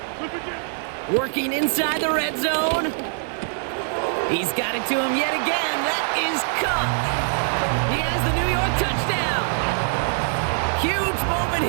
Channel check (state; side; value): silent; left; digital silence